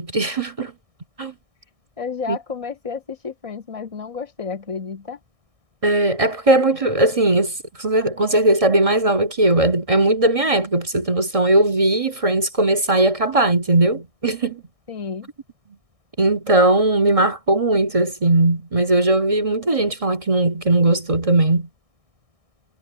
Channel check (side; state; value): left; late; 1.6 ms